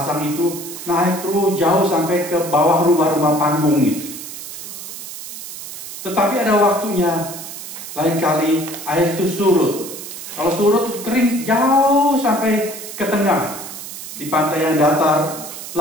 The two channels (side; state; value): right; noise; hiss, 11 dB below the sound